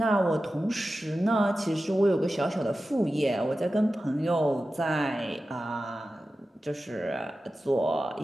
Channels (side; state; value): both; normal; correlation 0.94